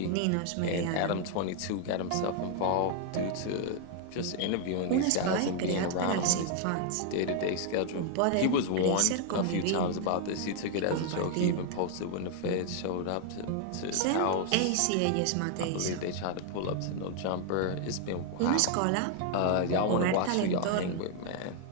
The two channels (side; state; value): both; different; correlation 0.00